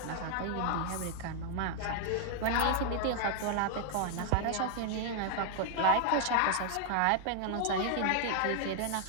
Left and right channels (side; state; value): both; different; correlation 0.00